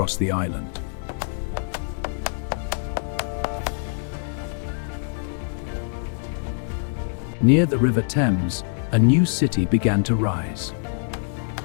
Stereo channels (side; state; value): right; silent; 62 dB below the other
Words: the island. Near the River Thames, a new city began to rise.